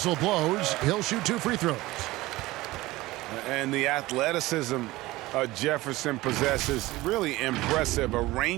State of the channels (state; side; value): quieter; left; 18.9 dB